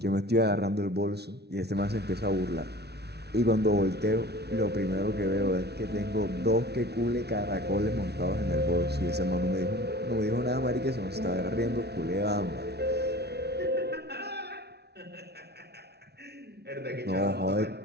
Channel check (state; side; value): late; left; 0.48 ms